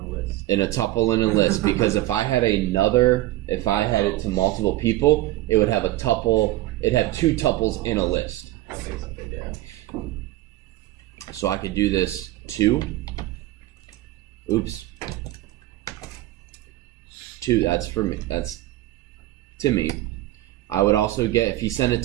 In a tuple in a list, because if I had it to multiple people, it would have a tuple. It'd have two tuples in a list. So I could do this two. Oops. Two. That's for me. That's to me. I would also get, if you send it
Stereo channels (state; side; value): quieter; left; 16.4 dB